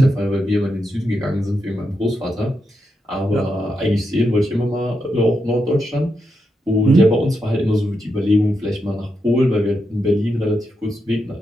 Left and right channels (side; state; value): both; normal; correlation 0.85